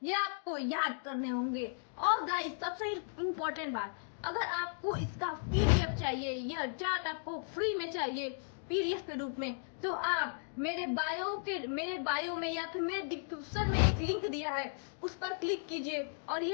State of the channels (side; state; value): right; silent; digital silence